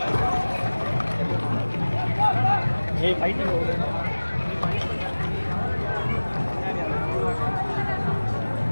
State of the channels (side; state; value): both; inverted; correlation -1.00